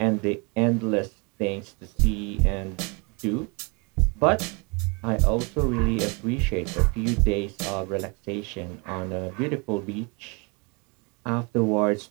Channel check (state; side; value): quieter; left; 30.9 dB